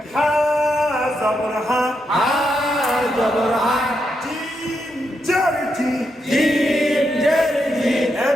হা জবর হা হা জবর হা জিম জারজি জিম জের জি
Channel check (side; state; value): both; normal; correlation 0.82